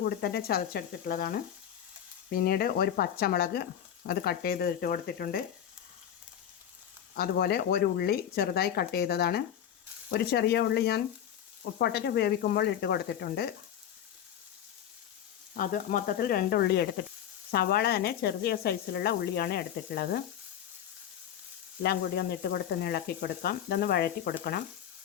കൂടി തന്നെ ചതച്ചെടുത്തിട്ടുള്ളതാണ്. പിന്നീട് ഒരു പച്ചമുളക് അത് കട്ട് ചെയ്ത് ഇട്ട് കൊടുത്തിട്ടുണ്ട്. അതുപോലെ ഒരു ഉള്ളി ചെറുതായി കട്ട് ചെയ്തതാണ്. ഒരു ചെറിയ ഉള്ളി ഞാൻ പൊട്ടറ്റോ വേവിക്കുമ്പോൾ ഇട്ട് കൊടുത്തിട്ടുണ്ട്. അത് മൊത്തത്തിൽ 2 ഉള്ളി എടുത്തിട്ട്, സവാള തന്നെ ചെറിയ സൈസിലുള്ള ഉള്ളിയാണ് എടുത്തിട്ടുള്ളത്. എല്ലാം കൂടി ഒന്ന് ഇട്ട് കൊടുത്ത് ഇളക്കി കൊടുക്കാം. ഇതൊന്ന് വഴറ്റി കൊടുക്കണം.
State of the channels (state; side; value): quieter; right; 10.0 dB